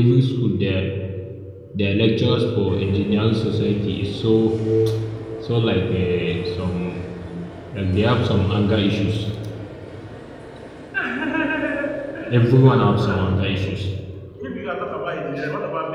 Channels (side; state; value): both; identical; correlation 1.00